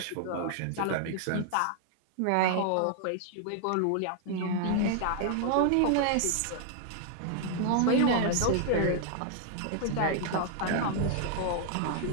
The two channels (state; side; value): different; both; correlation 0.00